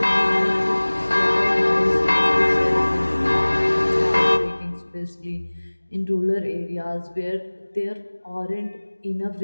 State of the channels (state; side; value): inverted; both; correlation -1.00